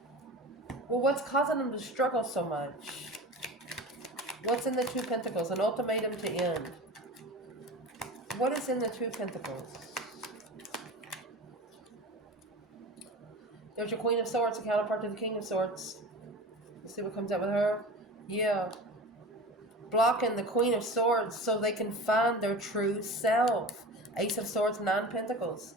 Well, what's causing them to struggle so much? What's in the 2 Pentacles? An ultimatum to end. What is in the 2 Pentacles? There's your Queen of Swords, a counterpart to the King of Swords. Let's see what comes out with her. Yeah. Blocking the Queen of Swords so they can find their true self. Ace of Swords, 9 Pentacles.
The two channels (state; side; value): normal; both; correlation 0.33